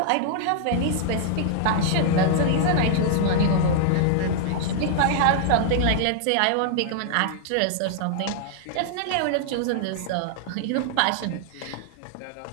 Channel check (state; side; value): different; both; correlation -0.01